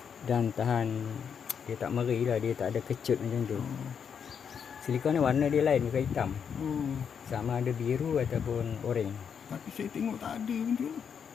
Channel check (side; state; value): right; quieter; 7.2 dB